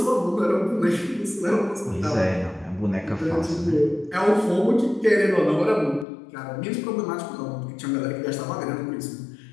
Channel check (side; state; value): right; drops out; at 6.1 s